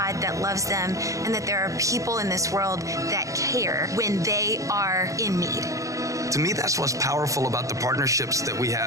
that loves them and that there are people in this world that care when they are in need. To me, that's what's powerful about the partnerships that we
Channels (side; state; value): left; late; 0.16 ms